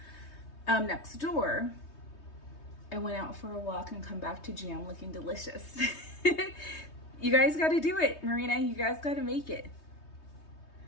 Next door, I went out for a walk and come back to jam looking delicious. You guys got to do it, Marina. You guys got to make it.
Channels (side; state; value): right; late; 3.2 ms